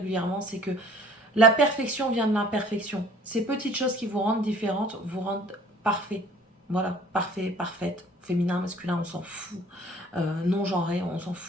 c'est que la perfection vient de l'imperfection. Ces petites choses qui vous rendent différentes vous rendent parfait. Voilà, parfait, parfaite. Féminin, masculin, on s'en fout. Non-genré, on s'en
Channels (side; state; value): both; normal; correlation 0.52